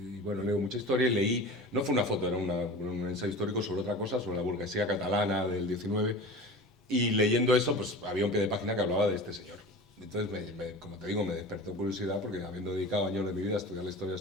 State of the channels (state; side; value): normal; both; correlation 0.35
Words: bueno, leo mucha historia y leí, no fue una foto, era un ensayo histórico sobre otra cosa, sobre la burguesía catalana del 19. Y leyendo eso, pues había un pie de página que hablaba de este señor. Entonces, como te digo, me despertó curiosidad porque habiendo dedicado años de mi vida a estudiar la historia de